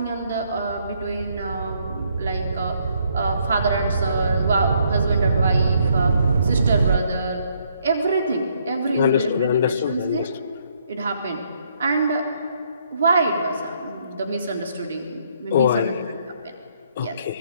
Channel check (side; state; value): both; inverted; correlation -0.70